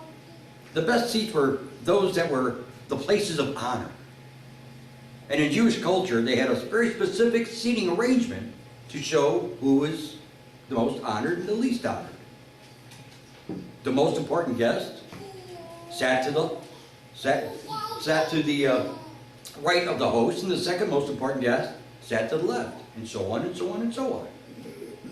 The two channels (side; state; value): both; identical; correlation 1.00